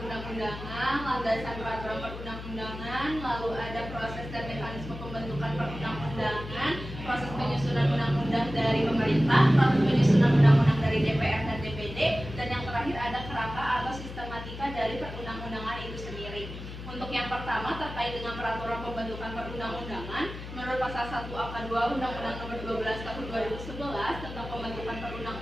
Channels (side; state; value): left; noise; hum, 10 dB below the sound